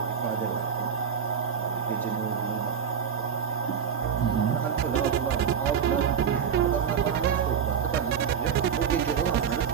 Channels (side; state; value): left; quieter; 7.5 dB